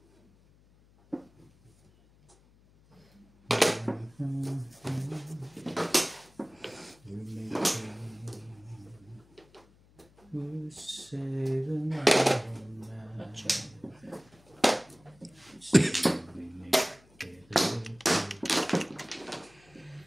We're saving our lives. We make it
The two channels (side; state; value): left; noise; hum, 29 dB below the sound